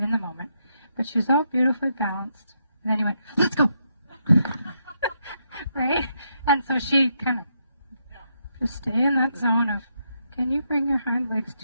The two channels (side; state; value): both; inverted; correlation -0.79